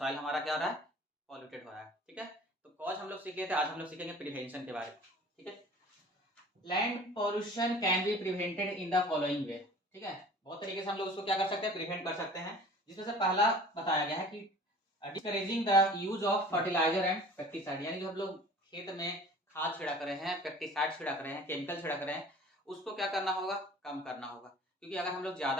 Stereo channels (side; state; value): both; normal; correlation 0.45